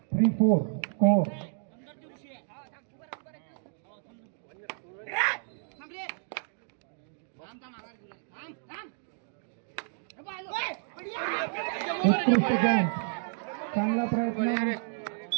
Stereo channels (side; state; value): left; silent; digital silence